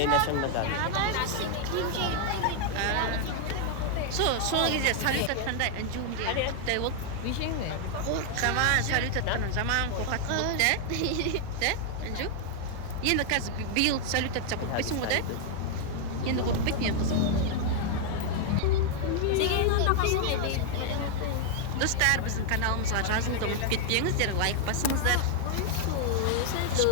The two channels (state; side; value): different; both; correlation 0.00